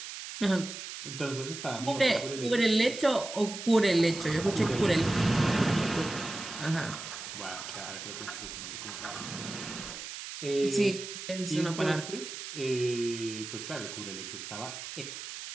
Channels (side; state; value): right; noise; hiss, 9 dB below the sound